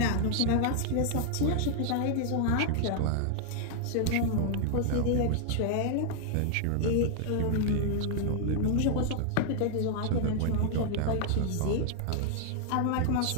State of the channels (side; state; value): both; different; correlation 0.00